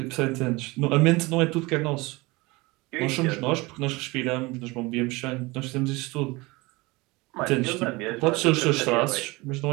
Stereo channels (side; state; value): left; quieter; 23.3 dB